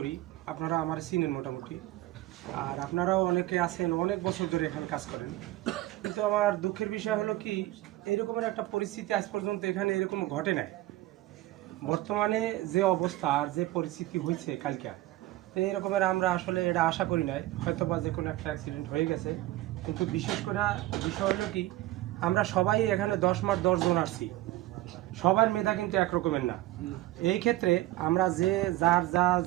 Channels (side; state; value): left; quieter; 16.7 dB